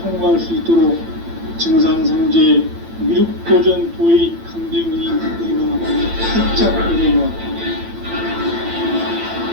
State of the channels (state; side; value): late; left; 8.9 ms